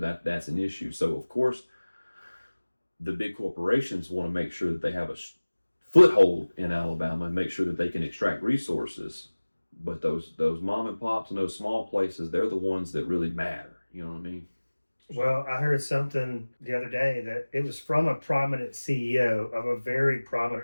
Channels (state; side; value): inverted; both; correlation -1.00